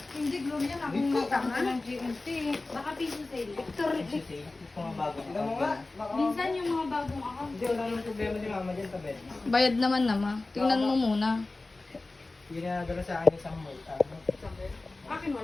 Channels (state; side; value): quieter; right; 3.2 dB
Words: Hindi, Gloria na. Akong matanga ng GMT. Baka piso sale. Ito mga bago. Tignan mo nga. Minsan yung mga bagong account. Hindi, wala nang problema ni mama dyan sa bed. Bayad naman nama. Tingnan mo muna. Yung nadala sa akin isang mall. Akin